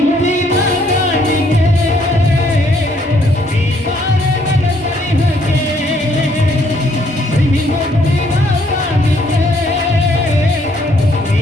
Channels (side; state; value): both; normal; correlation 0.67